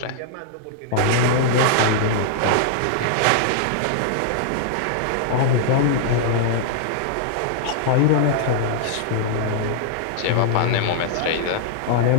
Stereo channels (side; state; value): both; different; correlation -0.01